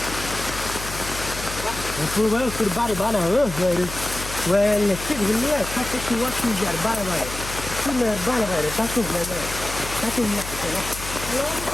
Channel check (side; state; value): left; noise; hum, 10 dB below the sound